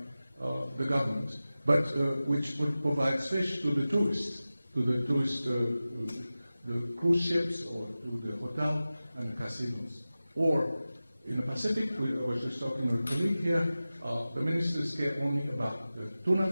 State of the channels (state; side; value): inverted; both; correlation -0.96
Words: the government, but which provides fish to the tourists, the cruise ships, or to the hotel and the casinos. Or in the Pacific, I was just talking with a colleague here, the ministers care only about the tuna